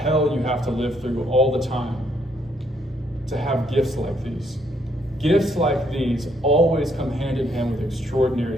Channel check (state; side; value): normal; both; correlation 0.71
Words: you have to live through all the time to have gifts like these. Gifts like these always come hand in hand with extraordinary